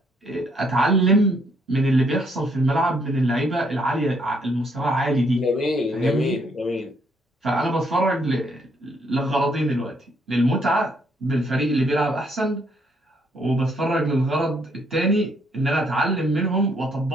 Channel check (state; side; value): normal; both; correlation 0.70